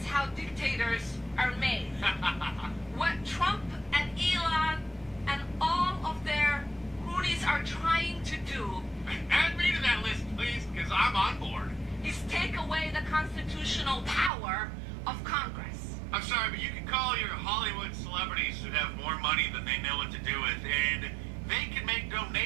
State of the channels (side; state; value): left; drops out; at 14.3 s